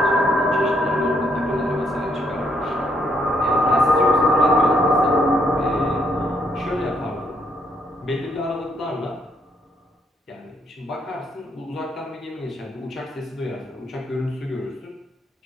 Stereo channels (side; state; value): both; normal; correlation 0.73